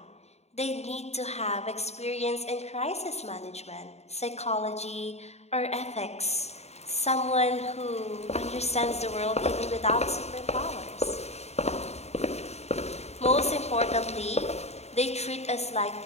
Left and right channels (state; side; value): late; right; 0.31 ms